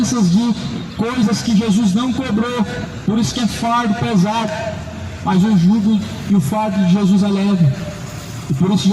de coisas que Jesus não cobrou. Por isso que é fardo pesado. Mas o jugo e o fardo de Jesus é leve. E por isso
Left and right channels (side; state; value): both; identical; correlation 1.00